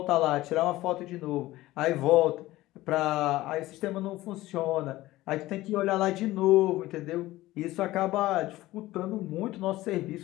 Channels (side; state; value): right; quieter; 17.1 dB